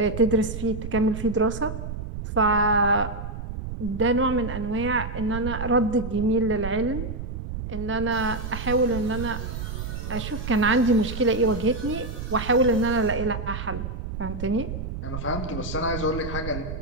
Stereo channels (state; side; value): noise; right; rumble, 7 dB below the sound